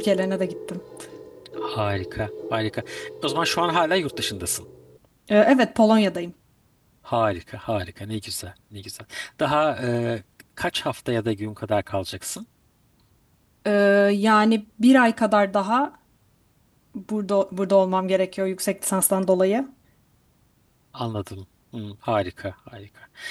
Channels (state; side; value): identical; both; correlation 1.00